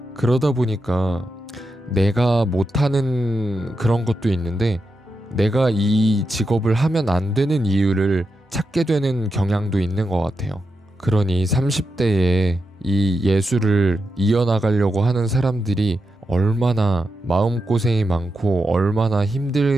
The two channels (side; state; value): both; normal; correlation 0.87